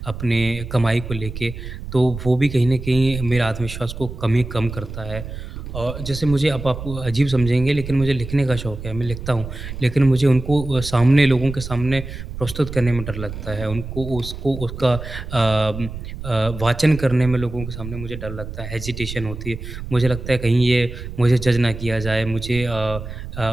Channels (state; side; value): noise; right; rumble, 9 dB below the sound